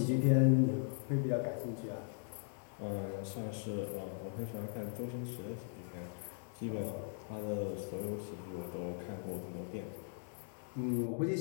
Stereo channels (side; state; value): right; silent; digital silence